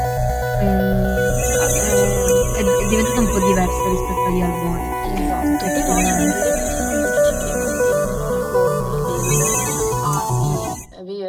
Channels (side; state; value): both; identical; correlation 1.00